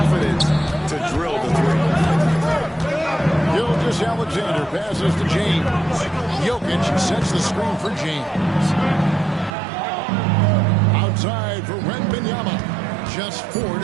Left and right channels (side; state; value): left; drops out; at 9.5 s